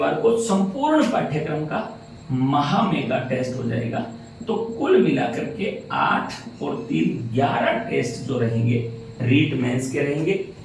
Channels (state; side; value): identical; both; correlation 1.00